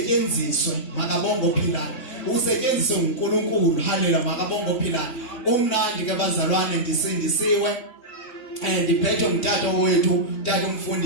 makabonga ophilayo usetyenziswe uNkulunkulu haleluya makabonga ophilayo umnandi ke bazalwane ndisindisiwe ndiphethwe ngutata wethu tata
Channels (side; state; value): right; late; 3.1 ms